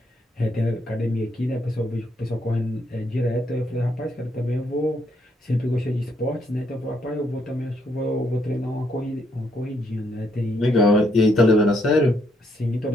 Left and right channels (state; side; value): normal; both; correlation 0.74